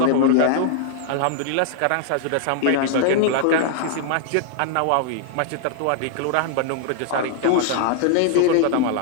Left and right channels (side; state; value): both; different; correlation 0.00